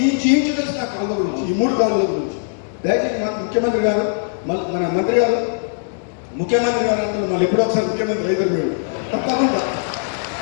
ఇంచు తెలుసు నా కాలువ గురించి, ఈ 3 కాలువల గురించి. దయచేసి ముఖ్యమంత్రి గారు మన మంత్రి గారు ముఖ్యమంత్రి గారు అంటే మళ్ళీ ఎప్పుడో ఒకసారి ముఖ్యమంత్రి అయితే మీరు తప్పకుండా.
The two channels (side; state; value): right; silent; digital silence